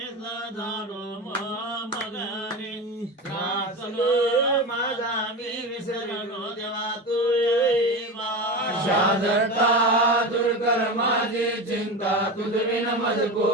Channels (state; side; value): normal; both; correlation 0.24